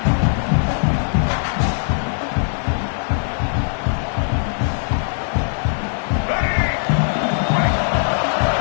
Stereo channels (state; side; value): silent; right; 64 dB below the other